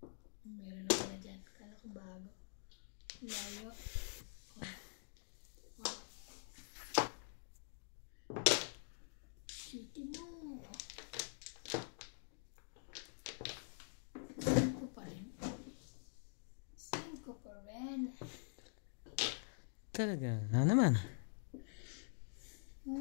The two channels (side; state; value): right; silent; digital silence